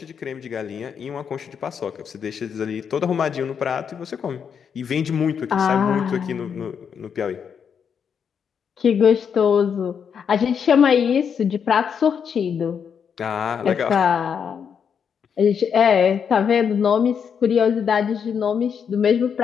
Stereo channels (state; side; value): quieter; right; 7.2 dB